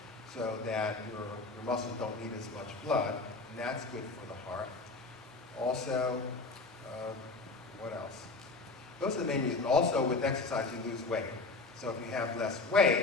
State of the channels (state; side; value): quieter; right; 3.6 dB